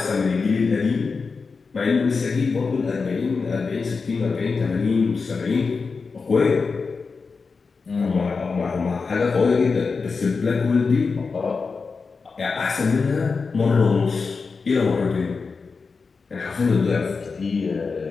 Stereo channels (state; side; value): quieter; right; 4.7 dB